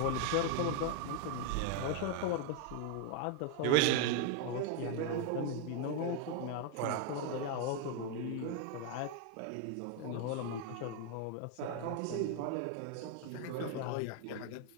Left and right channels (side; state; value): both; different; correlation 0.01